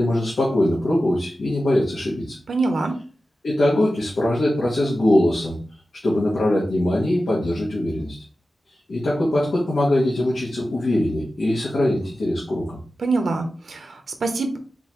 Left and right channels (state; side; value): normal; both; correlation 0.93